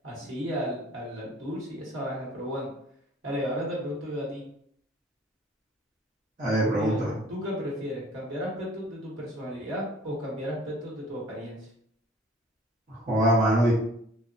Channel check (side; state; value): both; normal; correlation 0.51